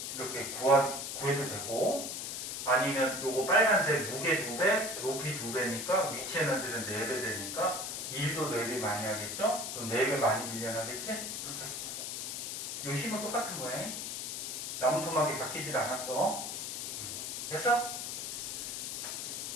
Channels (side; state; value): left; noise; hiss, 4 dB below the sound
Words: 이렇게 구해도 되고 아니면 요거 빨간색 무게 2배, 높이 2배니까 위치 에너지는 4배 되니까 일도 4배 많이 하겠죠? 그럼 4배 많이 밀려나겠지? 이렇게 해도 돼. 요 힘은 똑같은 거야. 나무 토막이 바뀌질 않았어. 됐어?